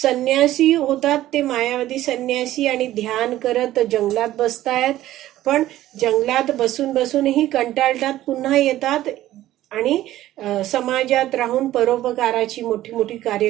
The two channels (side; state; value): left; quieter; 14.3 dB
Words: होतात ते मायावादी संन्यासी आणि ध्यान करत जंगलात बसतायत. पण जंगलात बसूनही कंटाळतात, पुन्हा येतात आणि समाजात राहून परोपकाराची मोठी मोठी कार्य